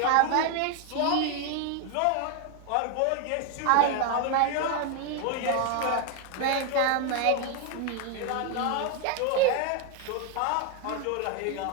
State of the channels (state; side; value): different; both; correlation 0.01